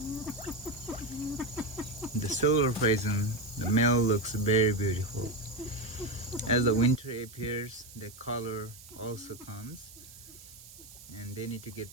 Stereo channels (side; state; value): right; noise; hiss, 18 dB below the sound